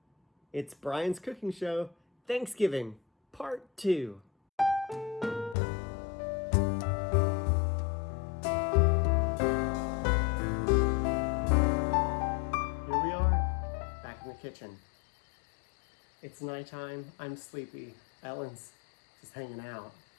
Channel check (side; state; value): right; drops out; at 5.6 s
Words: It's Brian's Cooking Show, Thanksgiving, Part 2. Kitchen. It's nighttime, I'm sleepy, Ellen's just hanging out.